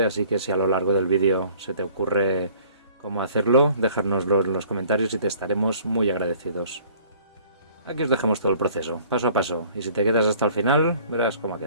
así que si a lo largo del vídeo se te ocurre cómo hacerlo, dejárnoslo en los comentarios y te estaremos muy agradecidos. Aquí os dejamos todo el proceso, paso a paso, y si te quedas hasta el final, verás cómo ha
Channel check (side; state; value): both; inverted; correlation -0.53